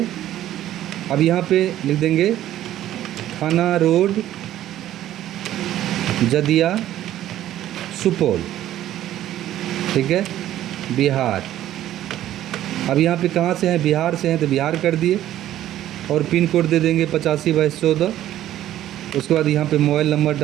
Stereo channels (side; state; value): left; quieter; 12.8 dB